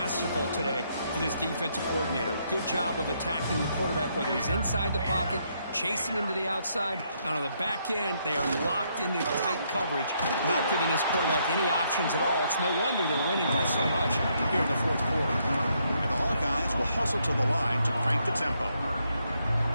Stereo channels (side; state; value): both; inverted; correlation -0.74